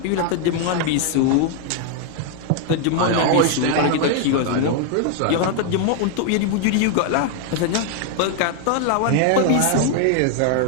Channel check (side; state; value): both; different; correlation 0.00